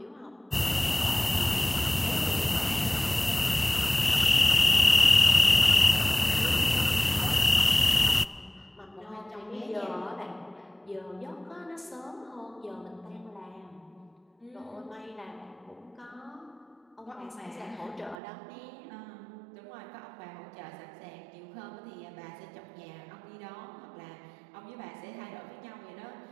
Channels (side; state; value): left; drops out; at 18.2 s